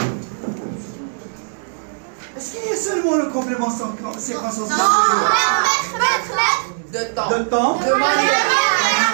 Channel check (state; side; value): silent; left; digital silence